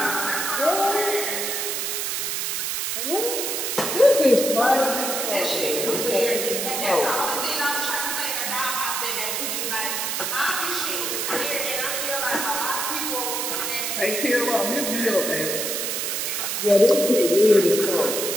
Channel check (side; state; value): right; noise; hiss, 1 dB below the sound